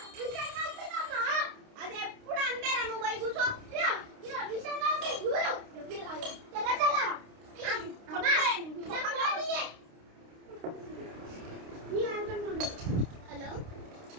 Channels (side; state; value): left; late; 29 ms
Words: అది ఎప్పుడు అంటేరా నువ్వు పోయి కూర్చో హలో